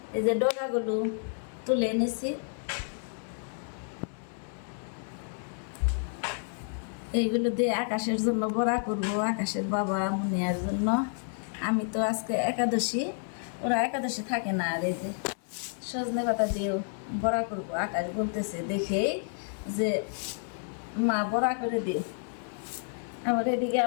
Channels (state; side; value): silent; right; 58 dB below the other